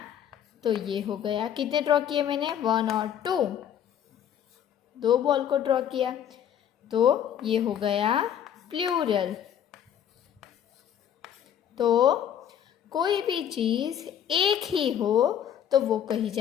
तो ये हो गया, कितने ड्रॉ किए मैंने? 1 और 2, 2 बॉल को ड्रॉ किया। तो ये हो गया प्लूरल। तो कोई भी चीज़ एक ही हो तो वो कही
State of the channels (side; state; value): right; quieter; 9.5 dB